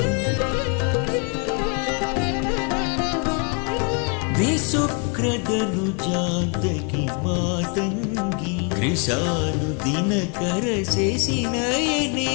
विसुक्रदनुजान्तकी मातंगी कृशानुदिनकर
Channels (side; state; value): right; quieter; 35.3 dB